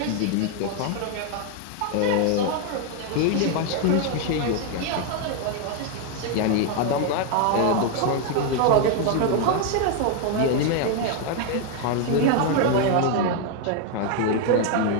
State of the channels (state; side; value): different; both; correlation 0.00